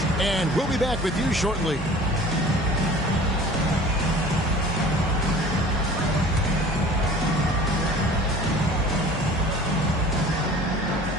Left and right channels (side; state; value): both; normal; correlation 0.45